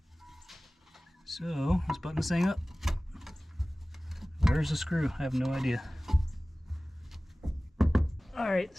So let's button this thing up. Where's the screw? I have no idea. Alright,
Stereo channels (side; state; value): both; normal; correlation 0.98